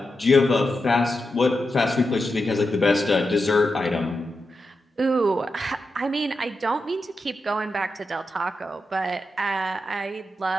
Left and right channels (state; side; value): normal; both; correlation 0.88